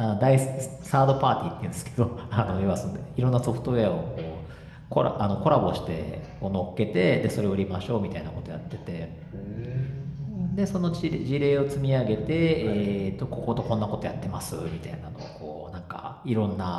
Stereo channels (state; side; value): identical; both; correlation 1.00